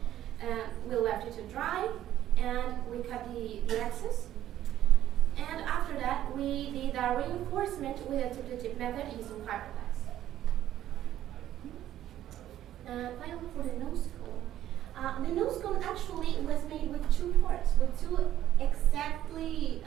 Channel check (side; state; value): left; quieter; 12.3 dB